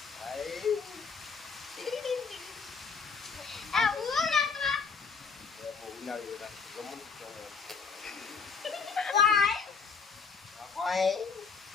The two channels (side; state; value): right; quieter; 5.4 dB